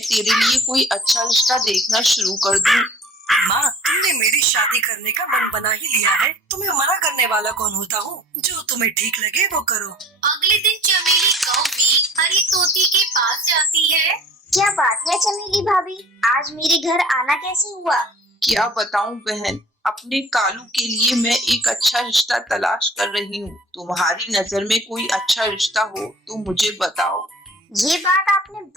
तेरे लिए कोई अच्छा रिश्ता देखना शुरू कर दूँ। माँ, तुमने मेरी शादी करने का मन बना ही लिया है। तुम्हें मना करने वाला कौन होता हूँ? जो तुम्हें ठीक लगे वो करो। अगले दिन चमेली कौवी हरी तोती के पास जाती है। क्या बात है चमेली भाभी, आज मेरे घर आना कैसे हुआ? क्या बताऊं बहन, अपने कालू के लिए मैं एक अच्छा रिश्ता तलाश कर रही हूँ। तुम्हारी नजर में कोई अच्छा रिश्ता हो तो मुझे बताओ। ये बात आपने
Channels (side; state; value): both; normal; correlation 0.48